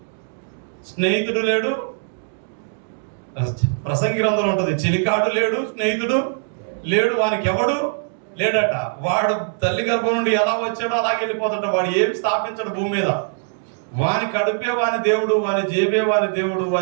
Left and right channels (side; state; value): left; silent; digital silence